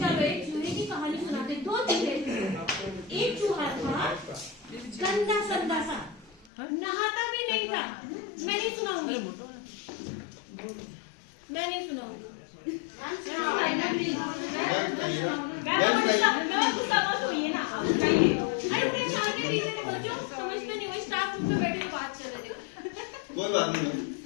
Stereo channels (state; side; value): drops out; right; at 6.5 s